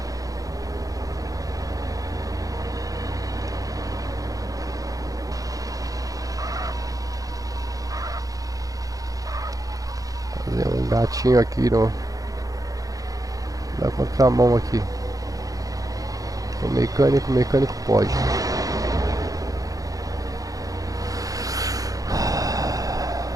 Fazer um gatinho aqui no, na contramão aqui. O mecânico pode.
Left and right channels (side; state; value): left; late; 0.17 ms